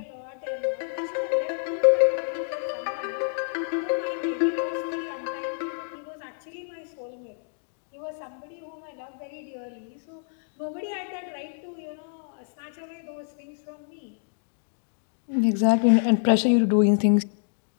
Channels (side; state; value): right; silent; digital silence